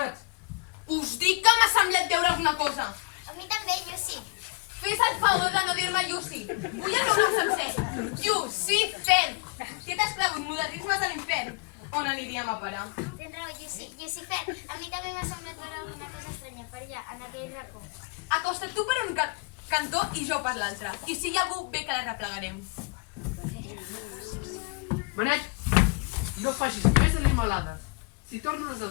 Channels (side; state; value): right; quieter; 31.2 dB